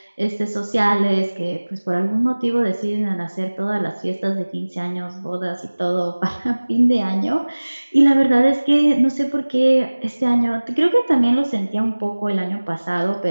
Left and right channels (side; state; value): both; inverted; correlation -1.00